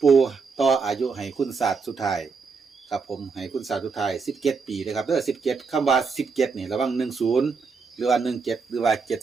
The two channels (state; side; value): quieter; left; 5.0 dB